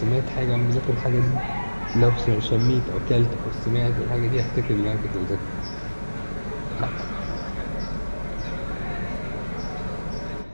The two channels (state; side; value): inverted; both; correlation -1.00